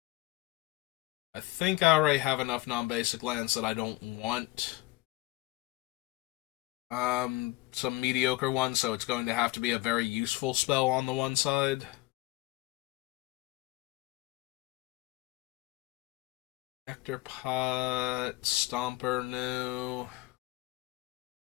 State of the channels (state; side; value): quieter; right; 19.9 dB